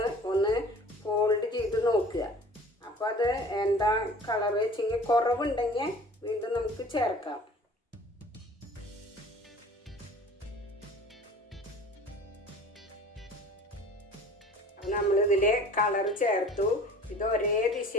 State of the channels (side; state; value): both; normal; correlation 0.45